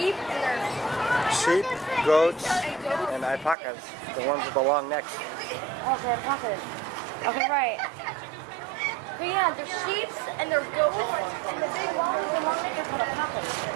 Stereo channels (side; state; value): left; drops out; at 3.6 s